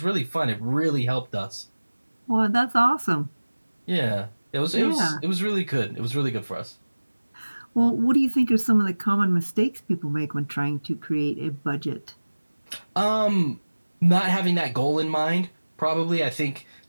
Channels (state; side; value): inverted; both; correlation -1.00